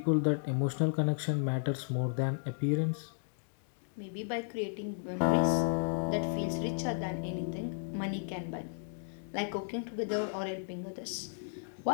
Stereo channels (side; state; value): right; silent; digital silence